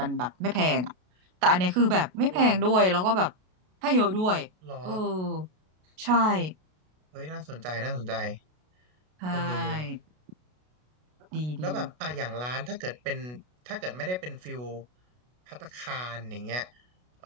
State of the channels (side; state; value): left; late; 33 ms